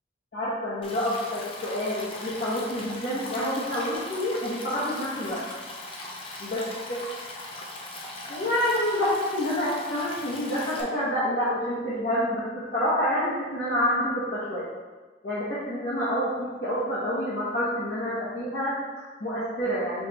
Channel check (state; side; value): normal; both; correlation 0.17